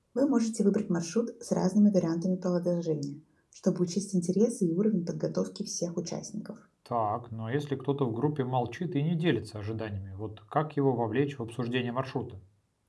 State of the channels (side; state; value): both; identical; correlation 1.00